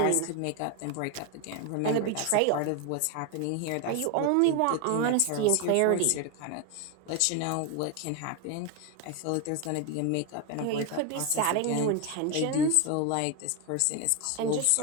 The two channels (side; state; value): both; different; correlation 0.01